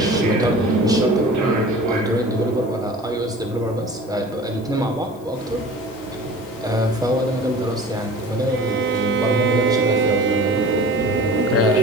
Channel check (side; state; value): left; noise; hiss, 26 dB below the sound